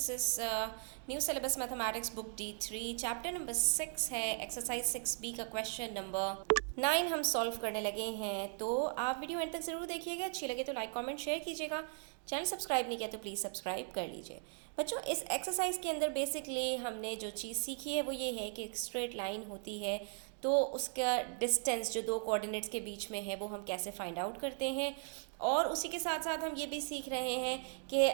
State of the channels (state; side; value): silent; left; 53 dB below the other